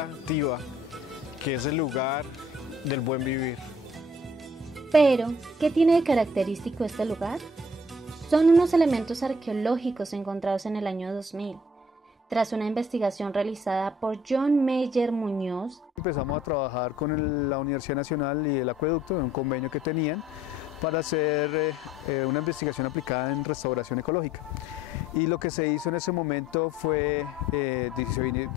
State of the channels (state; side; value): normal; both; correlation 0.58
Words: que es el lugar del buen vivir. Pero, ¿qué tiene de característico este lugar? Son unos elementos arqueológicos encontrados en el año 2000. Tras una investigación realizada por John Meyer Muñoz, empezamos a trabajar con la Universidad Nacional y el Acueducto en un convenio que tenían para hacer una investigación aplicada en restauración ecológica. Y lo que se hizo en ese momento fue, se